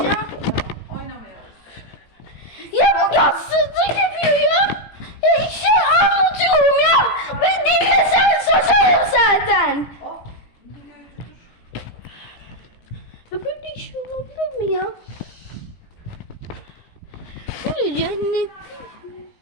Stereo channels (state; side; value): late; right; 17 ms